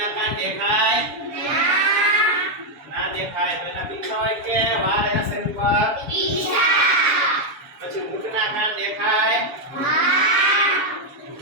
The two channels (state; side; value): late; left; 7.1 ms